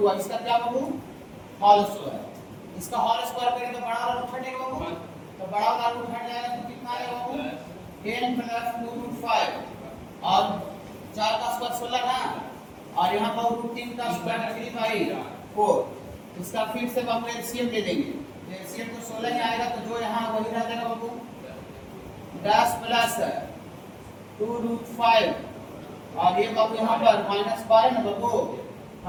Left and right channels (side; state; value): both; identical; correlation 1.00